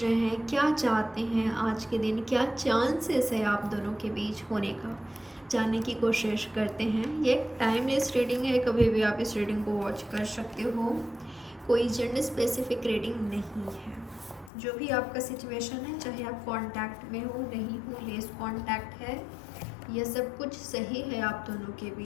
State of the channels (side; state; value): right; drops out; at 14.5 s